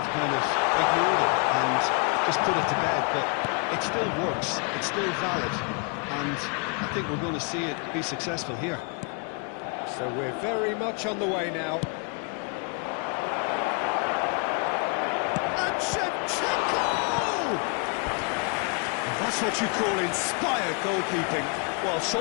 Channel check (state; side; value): quieter; right; 35.8 dB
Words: kind of ignored it and just put it to bed, but it still works, it's still valid, and I think we're going to see it be successful here. So we're very much on the way now. And Shevchenko! That's what you call inspired goalkeeping. Well,